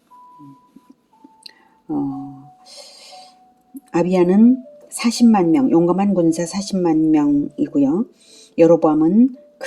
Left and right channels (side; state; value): both; identical; correlation 1.00